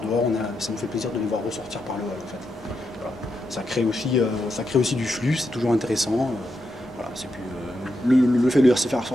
dehors, ça nous fait plaisir de les voir ressortir par le hall en fait. Voilà. Ça crée aussi du flux, c'est toujours intéressant. Voilà, c'est plus, le fait de se faire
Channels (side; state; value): both; normal; correlation 0.84